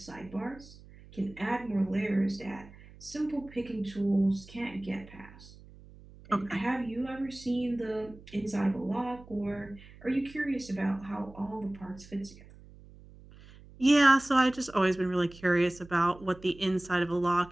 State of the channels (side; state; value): right; noise; hum, 21 dB below the sound